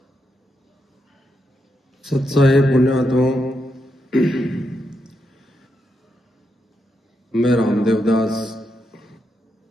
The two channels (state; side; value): normal; both; correlation 0.83